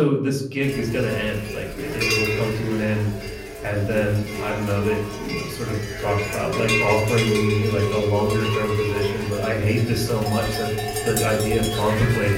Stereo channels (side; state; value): both; identical; correlation 1.00